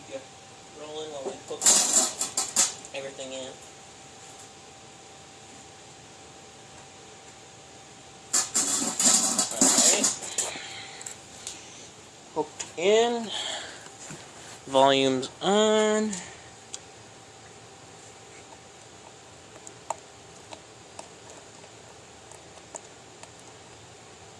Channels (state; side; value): identical; both; correlation 1.00